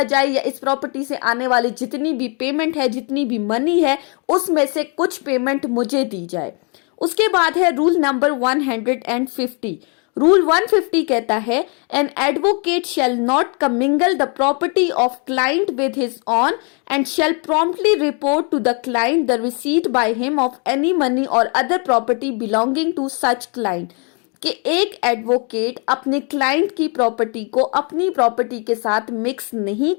जाए या इस प्रॉपर्टी से आने वाली जितनी भी पेमेंट है, जितनी भी मनी है, उसमें से कुछ पेमेंट मुझे दी जाए। उसके बाद है रूल नंबर 150। रूल 150 कहता है an advocate shall not commingle the property of client with his own and shall promptly report to the client the receipt by him of any money और other property belonging to such client. कि एक एडवोकेट अपने क्लाइंट की प्रॉपर्टी को अपनी प्रॉपर्टी के साथ मिक्स नहीं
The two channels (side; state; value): right; quieter; 35.9 dB